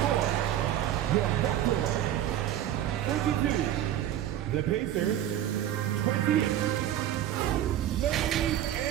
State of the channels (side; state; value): left; quieter; 11.8 dB